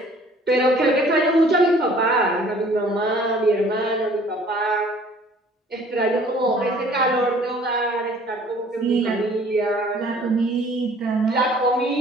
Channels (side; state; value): both; normal; correlation 0.54